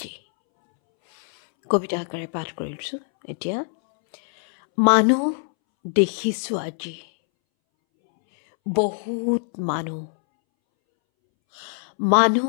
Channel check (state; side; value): silent; right; 63 dB below the other